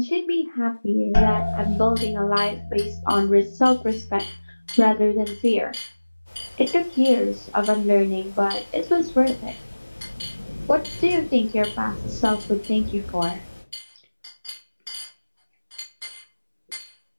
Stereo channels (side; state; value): both; inverted; correlation -1.00